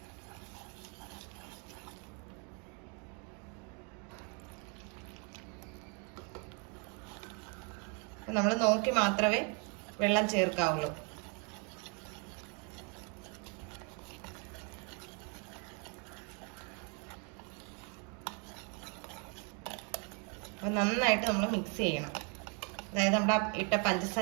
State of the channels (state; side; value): quieter; left; 36.4 dB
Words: നമ്മൾ നോക്കി മാത്രമേ വെള്ളം ചേർക്കാവുള്ളൂ. അപ്പോൾ നന്നായിട്ട് നമ്മൾ മിക്സ് ചെയ്യണം. അതായത് നമ്മുടെ ഇട്ട